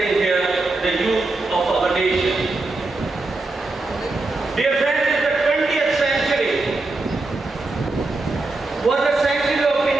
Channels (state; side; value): quieter; left; 3.2 dB